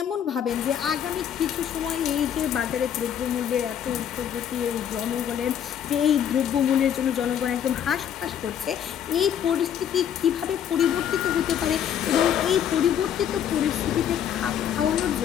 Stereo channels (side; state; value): right; quieter; 9.3 dB